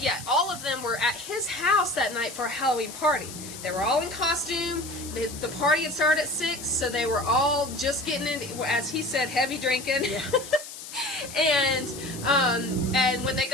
all of them were at his house that night for a Halloween party. They were all in costume. The party had started at 6, so they were all just getting in, as he said, heavy drinking. Yeah. And when they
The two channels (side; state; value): left; noise; hiss, 12 dB below the sound